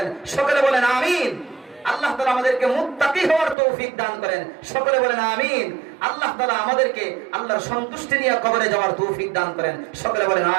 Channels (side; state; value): left; drops out; at 3.6 s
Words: সকলে বলেন আমিন। আল্লাহ তাআলা আমাদেরকে মুত্তাকি হওয়ার তৌফিক দান করেন। সকলে বলেন আমিন। আল্লাহ তাআলা আমাদেরকে আল্লাহর সন্তুষ্টি নিয়ে কবরে যাওয়ার তৌফিক দান করেন। সকলে বলেন